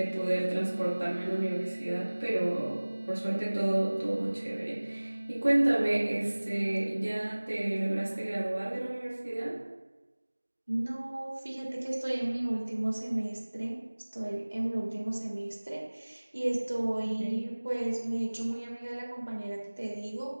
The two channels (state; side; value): inverted; both; correlation -1.00